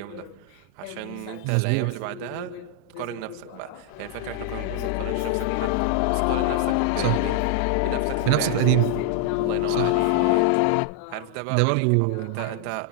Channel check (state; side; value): different; both; correlation 0.00